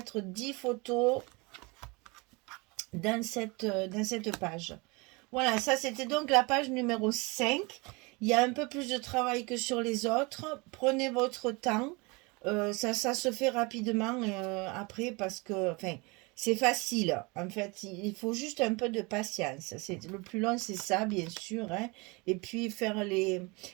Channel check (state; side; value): quieter; left; 27.2 dB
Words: 10 photos dans cette page. Voilà, ça c'était donc la page numéro 5. Il y a un peu plus de travail que sur les autres. Prenez votre temps. Ça se fait rapidement après parce que c'est facile. En fait, il faut juste un peu de patience. Le plus long, c'est ça, bien sûr. Hein. Et puis faire